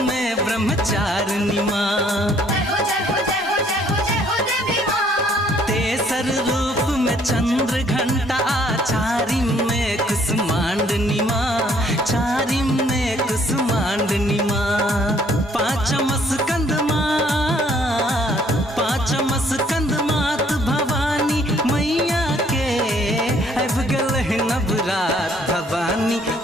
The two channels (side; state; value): both; normal; correlation 0.63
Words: में ब्रह्मचारिणी माँ। तेसर रूप में चंद्र घंटा, चारिम में कुसुमांडनी माँ, चारिम में कुसुमांडनी माँ। पांचम स्कंद माँ, पांचम स्कंद मात भवानी मैया के, अब गल है नवरात भवानी